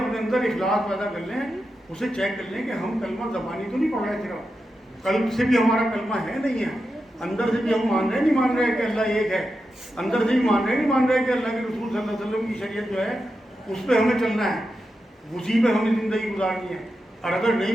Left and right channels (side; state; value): both; normal; correlation 0.89